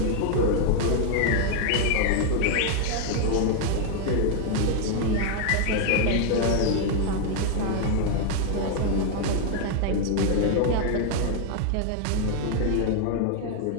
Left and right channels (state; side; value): different; both; correlation 0.00